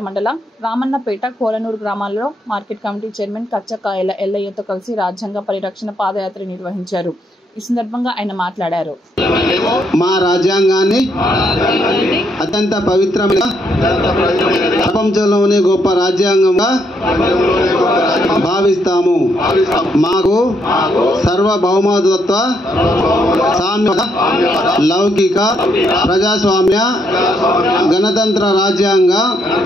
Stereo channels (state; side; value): normal; both; correlation 0.75